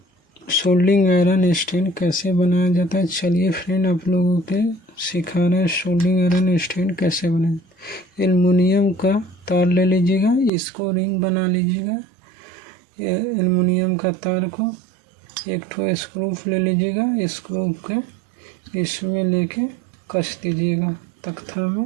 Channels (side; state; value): left; drops out; at 10.5 s